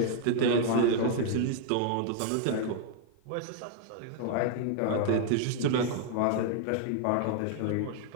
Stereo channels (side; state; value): both; different; correlation 0.00